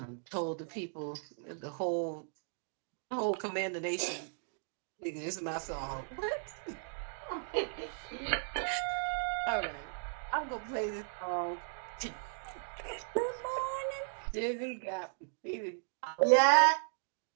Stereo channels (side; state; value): left; silent; digital silence